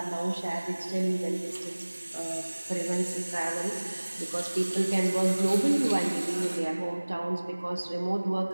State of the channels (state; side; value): inverted; both; correlation -1.00